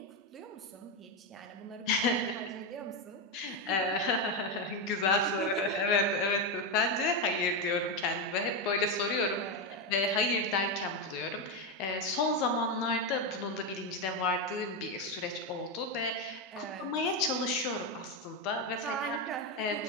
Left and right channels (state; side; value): normal; both; correlation 0.08